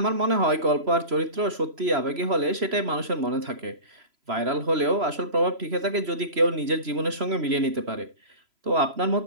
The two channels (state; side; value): late; left; 3.0 ms